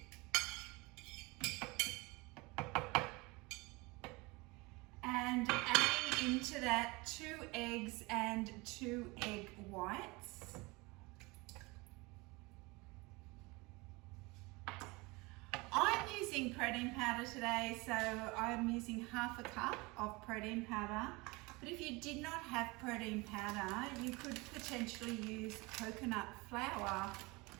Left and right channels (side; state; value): left; quieter; 24.8 dB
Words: and adding into that 2 eggs and 2 egg whites. I'm using protein powder today, so I'm using 1/2 cup of protein powder. But if you did not have protein powder, you could potentially use coconut flour,